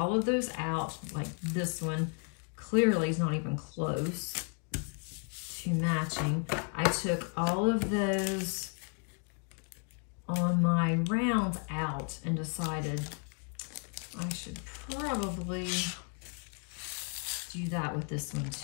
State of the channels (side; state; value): right; quieter; 38.7 dB